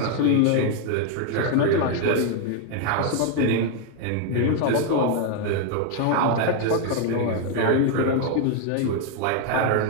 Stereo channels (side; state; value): both; different; correlation 0.01